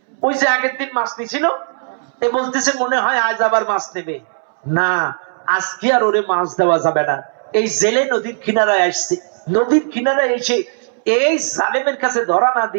ওই যে আগের দিন মাছ নিছিল, এ বলতেছে মনে হয় আজ আবার মাছ নেবে না, আজকে আর ওরে মাছ দেওয়া যাবে না। এই জেলে নদীর কিনারায় আসছে, নদীর কিনারায় এসে এই জালেমের কাছে ধরা না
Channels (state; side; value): silent; left; 66 dB below the other